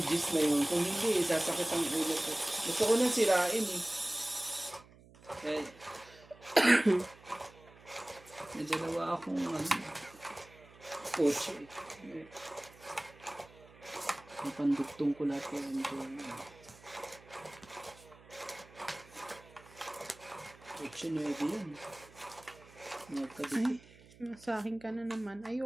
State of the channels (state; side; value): noise; right; hum, 23 dB below the sound